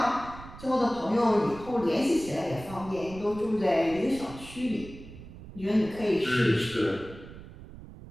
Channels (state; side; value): noise; right; rumble, 16 dB below the sound